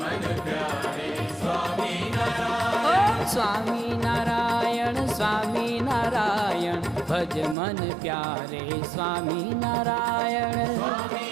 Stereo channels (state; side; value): drops out; left; at 7.6 s